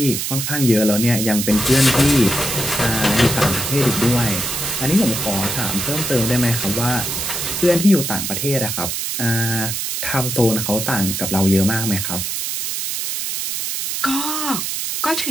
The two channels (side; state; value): right; noise; hiss, 3 dB below the sound